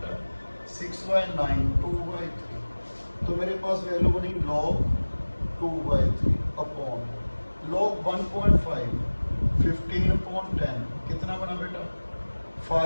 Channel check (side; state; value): both; inverted; correlation -1.00